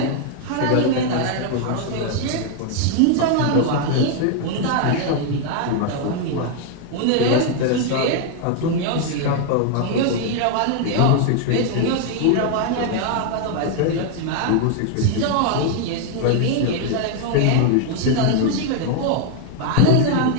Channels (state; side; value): different; both; correlation 0.00